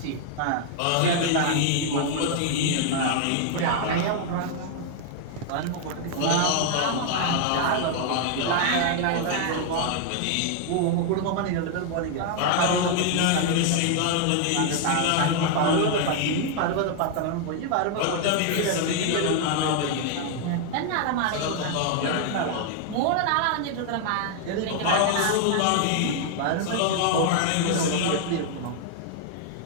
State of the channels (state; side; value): different; both; correlation 0.00